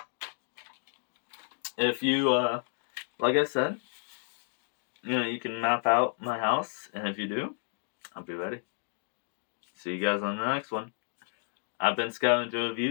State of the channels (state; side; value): silent; right; 57 dB below the other